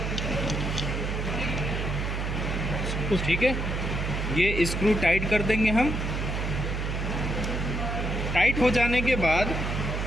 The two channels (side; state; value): right; noise; hum, 2 dB below the sound